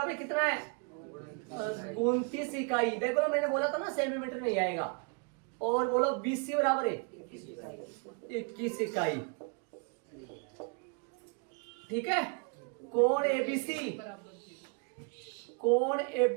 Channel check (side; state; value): left; quieter; 35.5 dB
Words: कितना है? 29 इकाई। देखो मैंने बोला था ना सेंटीमीटर नहीं आएगा। और बोलो बीसी बराबर है 21 इकाई। ठीक है, कोण एबीसी, कोण